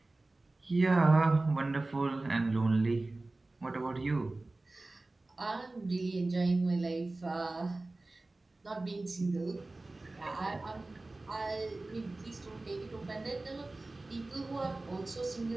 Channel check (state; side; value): quieter; left; 3.0 dB